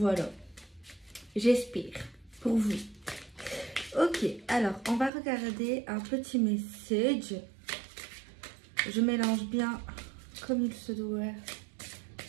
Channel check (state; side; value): drops out; left; at 5.1 s